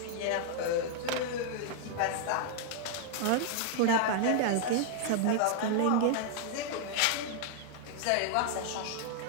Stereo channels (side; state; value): both; different; correlation 0.00